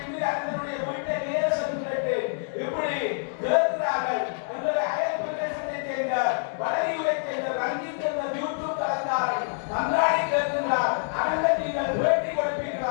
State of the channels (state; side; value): silent; right; digital silence